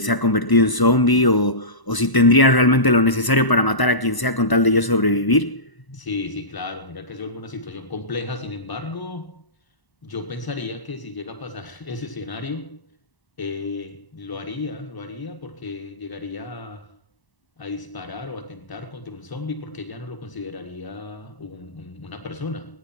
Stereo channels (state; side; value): late; right; 1.0 ms